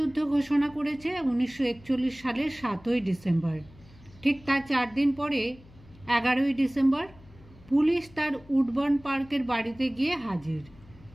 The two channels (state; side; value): noise; left; hum, 24 dB below the sound